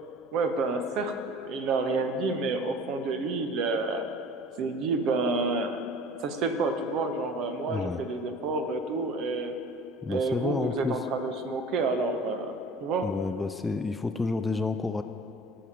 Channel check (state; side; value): normal; both; correlation 0.44